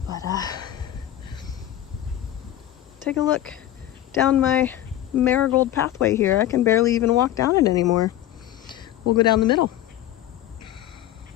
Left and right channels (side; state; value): right; quieter; 13.0 dB